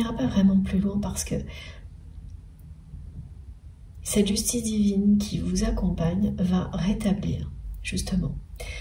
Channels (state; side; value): identical; both; correlation 1.00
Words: pas vraiment plus loin parce que cette justice divine qui vous accompagne va rétablir justement